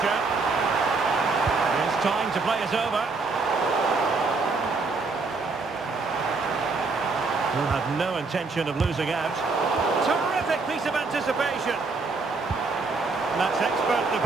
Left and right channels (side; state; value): left; quieter; 4.0 dB